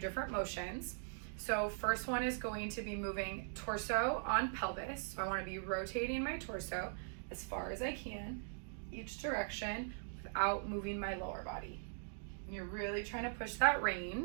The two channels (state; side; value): silent; left; digital silence